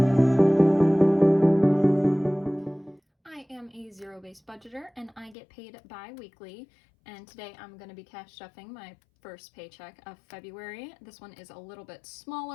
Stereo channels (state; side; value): drops out; right; at 5.4 s